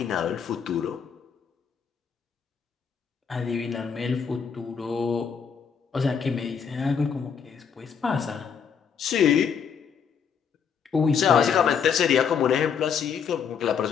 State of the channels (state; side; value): quieter; right; 6.9 dB